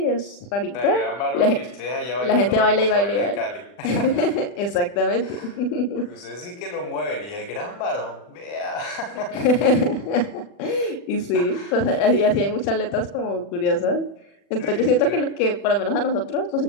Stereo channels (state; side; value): late; right; 40 ms